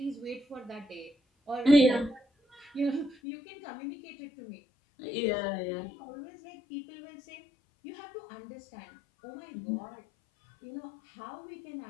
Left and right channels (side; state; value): right; drops out; at 3.2 s